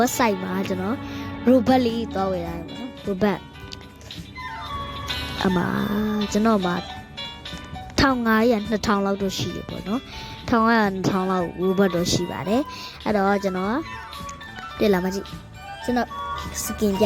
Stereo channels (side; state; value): both; identical; correlation 1.00